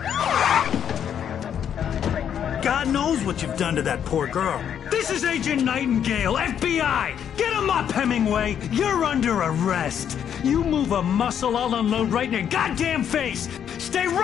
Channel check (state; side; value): quieter; right; 8.9 dB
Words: God knows what you've done to that poor girl. This is Agent Nightingale, FBI! Get him up, Hemingway! You're under arrest! You move a muscle, I'll unload right in your goddamn face! Stay